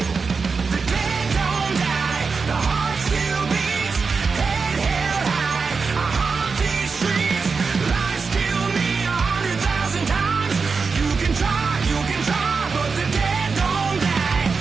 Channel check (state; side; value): quieter; left; 4.9 dB